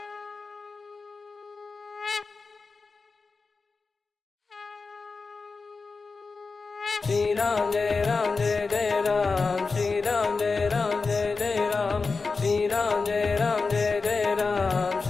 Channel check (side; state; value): right; quieter; 4.3 dB